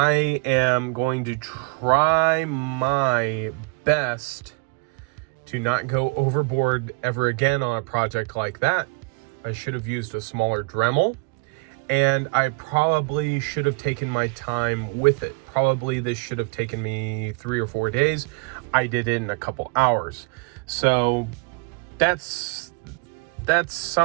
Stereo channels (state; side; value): quieter; left; 29.8 dB